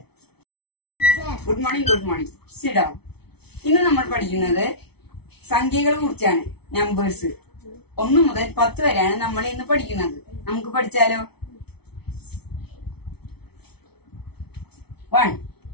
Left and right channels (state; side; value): late; right; 0.98 ms